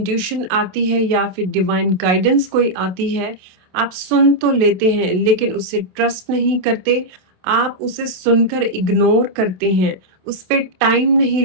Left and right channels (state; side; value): late; left; 27 ms